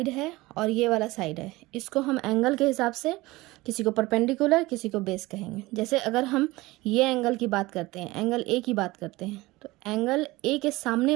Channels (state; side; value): quieter; left; 20.3 dB